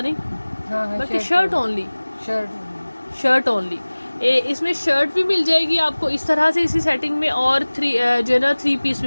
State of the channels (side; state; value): both; inverted; correlation -1.00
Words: नहीं, बल्कि शर्ट ओनली, शर्ट ओनली। इसमें शर्ट भी मिल जाएगी आपको इस तरह से इसी सेटिंग में, और जो है ना 3 पीस